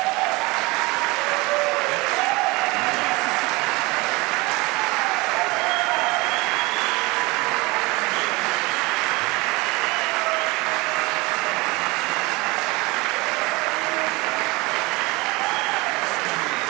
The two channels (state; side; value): quieter; left; 24.0 dB